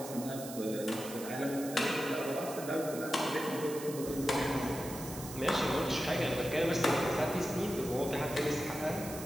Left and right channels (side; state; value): right; noise; hiss, 11 dB below the sound